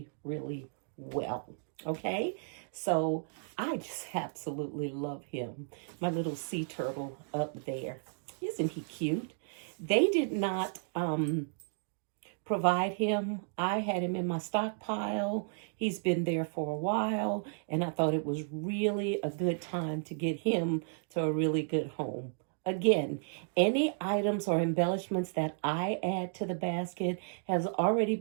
well. Okay, so I just absolutely love him, my little sea turtle up there. Isn't he cute? They did not provide him. I had him in my stockpile. He's been there for a while, and I thought it was really a good time to get him to a really good home. Again, any items or embellishments that I add to the basket has already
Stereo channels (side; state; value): left; silent; digital silence